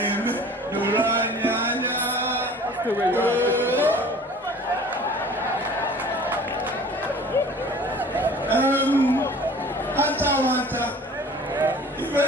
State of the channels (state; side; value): normal; both; correlation 0.47